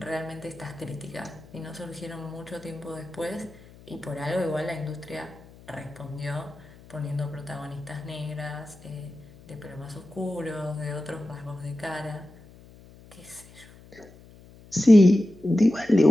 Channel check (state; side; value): noise; left; hum, 22 dB below the sound